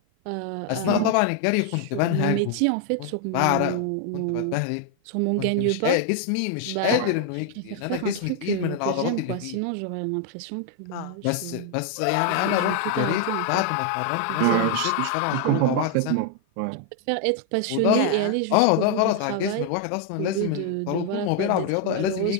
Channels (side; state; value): both; different; correlation 0.00